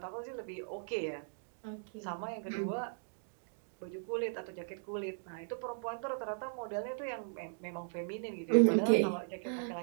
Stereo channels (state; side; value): silent; left; digital silence